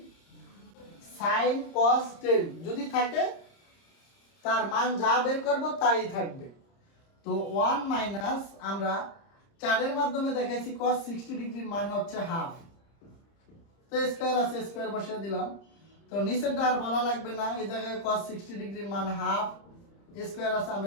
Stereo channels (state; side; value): late; right; 30 ms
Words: sin cos 10 যদি থাকে তার মান যা বের করব তাই থাকবে। তো 1 মাইনাস আমরা 4 এর মাধ্যমে দেখাইছি cos 60 ডিগ্রির মান হচ্ছে হাফ। তো স্কয়ার আছে, স্কয়ার বসিয়ে দিলাম। তো নিচেরটা আর বলা লাগবে না, এই জায়গায় cos 60 ডিগ্রির মান হাফ, স্কয়ার আছে,